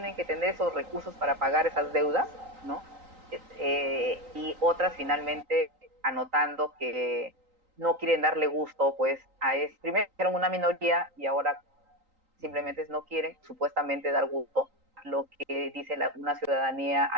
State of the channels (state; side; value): late; left; 3.9 ms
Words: que tener esos recursos para pagar esas deudas, ¿no? Y otras finalmente anotando que no quieren darle gusto, pues, primero eran una minoría y ahora simplemente no quieren supuestamente dar gusto lo que dice una ciudadanía